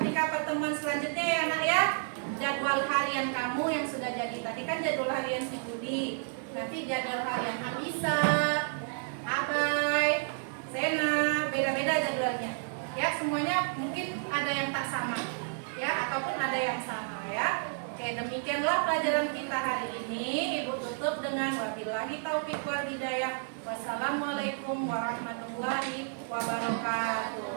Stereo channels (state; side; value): silent; left; digital silence